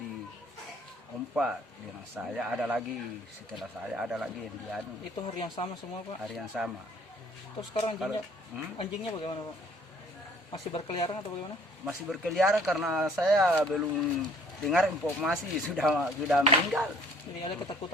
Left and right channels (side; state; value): both; normal; correlation 0.56